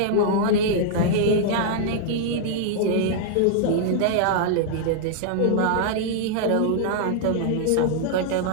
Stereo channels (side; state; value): both; different; correlation -0.01